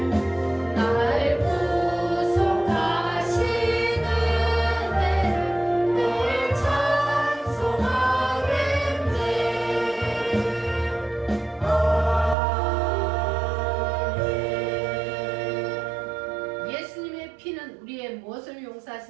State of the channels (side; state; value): left; drops out; at 12.4 s